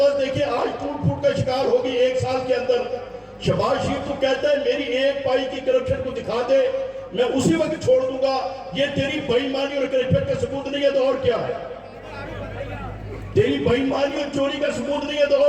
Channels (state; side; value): identical; both; correlation 1.00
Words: دیکھیں آج ٹوٹ پھوٹ کا شکار ہو گئی 1 سال کے اندر۔ شہباز شریف تو کہتا ہے میری 1 پائی کی کرپشن کو دکھا دے، میں اسی وقت چھوڑ دوں گا۔ یہ تیری بے ایمانی اور کرپشن کا ثبوت نہیں ہے تو اور کیا ہے؟ تیری بے ایمانی اور چوری کا ثبوت نہیں ہے تو